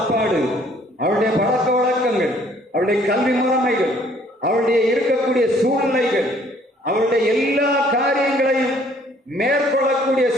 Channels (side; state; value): both; normal; correlation 0.60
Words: அவருடைய பழக்க வழக்கங்கள், அவருடைய கல்வி முறைமைகள், அவருடைய இருக்கக்கூடிய சூழ்நிலைகள், அவருடைய எல்லா காரியங்களையும் மேற்கொள்ளக்கூடிய